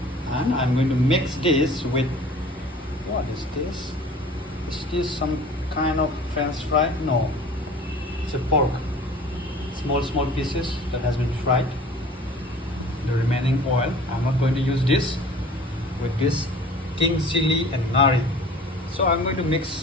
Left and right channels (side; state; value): both; normal; correlation 0.45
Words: and I'm going to mix this with what is this? Is this some kind of French fry? No, it's a pork. Small pieces that has been fried. The remaining oil. I'm not going to use this with this king chili and nari. So I'm going to